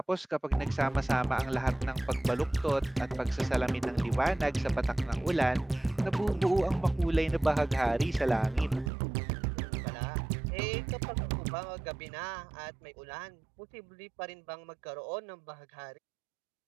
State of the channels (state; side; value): drops out; left; at 8.9 s